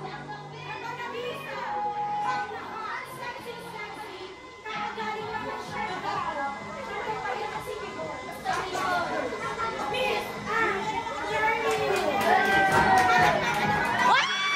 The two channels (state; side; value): identical; both; correlation 1.00